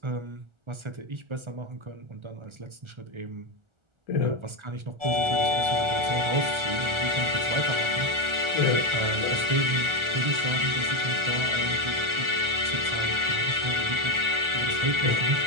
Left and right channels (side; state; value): left; late; 1.3 ms